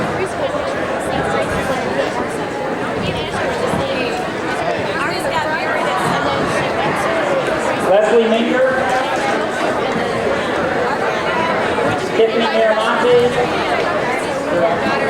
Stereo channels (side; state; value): both; identical; correlation 1.00